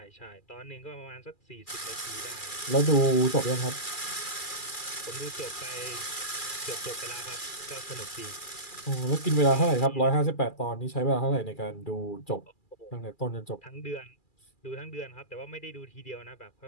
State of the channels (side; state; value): right; late; 2.4 ms